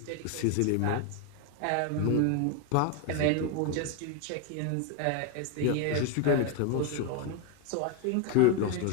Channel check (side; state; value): both; different; correlation 0.01